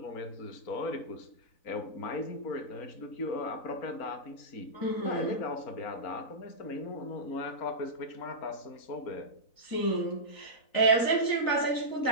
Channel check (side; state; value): right; late; 4.0 ms